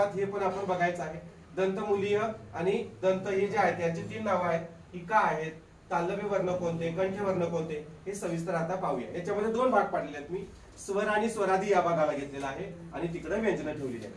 हे पण आपण बघायचं आहे. दंतमूलीय आणि दंत हे जे आहेत यांची 3 नावं आहेत. ही का आहेत, तालव्य वर्ण कोणते, कंठ वर्ण कोणते हे सविस्तर आता पाहूया. याच्यामध्ये 2 भाग पाडलेले आहेत. मी स्वर आणि स्वरादी या भागाला घेतलेला आहे आणि तिकडे व्यंजन ठेवलेली आहेत.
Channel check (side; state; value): both; identical; correlation 1.00